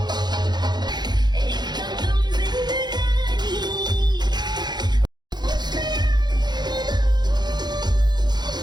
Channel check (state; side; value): late; left; 0.21 ms